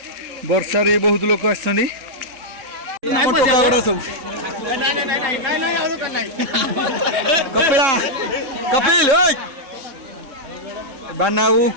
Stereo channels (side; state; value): left; late; 3.7 ms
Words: वर्षा रे बहुत लोग आसछन्ती टोकागुड़ा सब कपिला कपिल बनाऊ